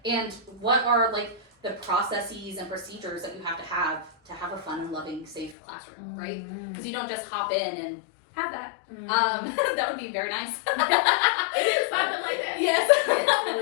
And what are like the processes and procedures that you have to have a fun and loving, safe classroom, right? Because you don't just hop in and have that. That would be very nice. It is something like that.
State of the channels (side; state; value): right; drops out; at 5.6 s